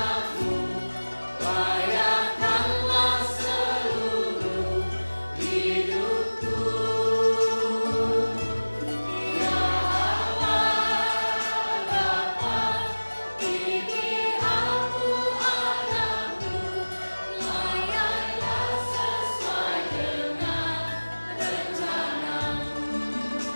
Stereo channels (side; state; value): both; inverted; correlation -1.00